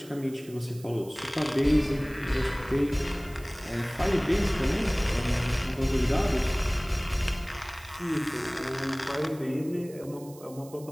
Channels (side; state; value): right; noise; hiss, 21 dB below the sound